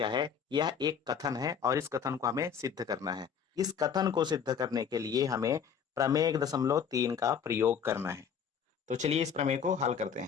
है। यह एक कथन है और इस कथन को हमें सिद्ध करना है। इस कथन को सिद्ध करने के लिए हमें प्रमेय 1.3 का प्रयोग करना है। तो चलिए इस प्रमेय को हल करते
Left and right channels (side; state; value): right; quieter; 7.4 dB